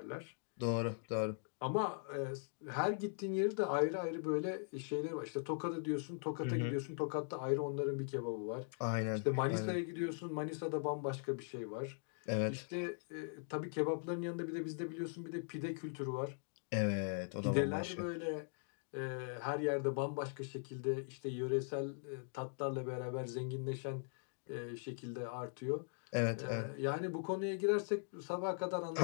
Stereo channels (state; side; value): silent; right; digital silence